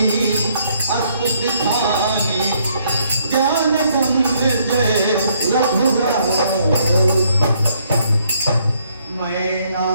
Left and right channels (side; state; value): both; inverted; correlation -0.68